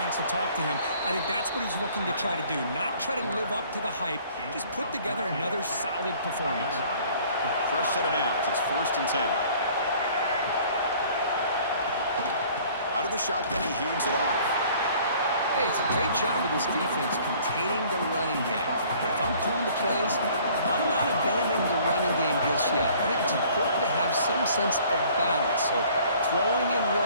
to talk to him. I think that's what he's looking to try to do, not try to live up to the hype, just put together another solid performance. Fresh set of downs. It's 1st and 10. Out of the shotgun, he hands it off. Hey, it's a great job with this defense containing the running game. But if I'm calling the plays, I'm not abandoning the running game just yet. I think it's important to have some sense of balance. So throwing and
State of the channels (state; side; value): inverted; both; correlation -0.54